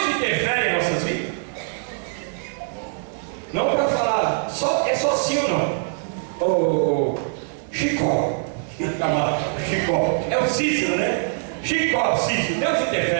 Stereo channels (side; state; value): left; silent; 63 dB below the other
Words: interfere em nossas vidas? Não para falar, é só sim ou não. Chicó, Chicó, é o Cícero, né? Chicó, Cícero, Deus